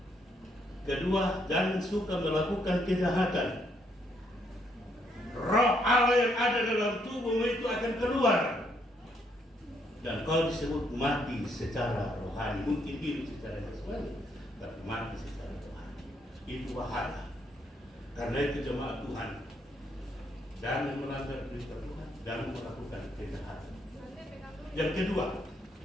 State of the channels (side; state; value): both; normal; correlation 0.73